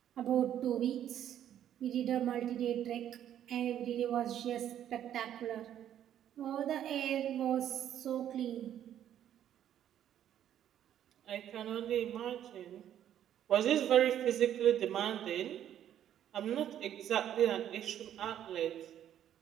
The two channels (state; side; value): quieter; left; 10.7 dB